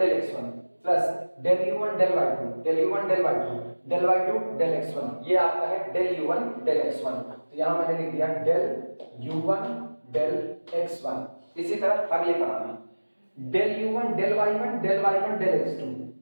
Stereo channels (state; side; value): inverted; both; correlation -1.00